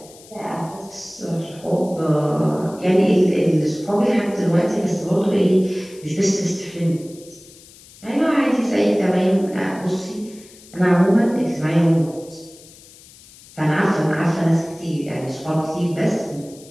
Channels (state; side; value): noise; left; hiss, 22 dB below the sound